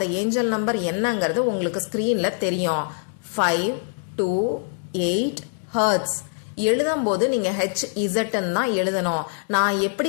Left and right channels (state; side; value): silent; right; 63 dB below the other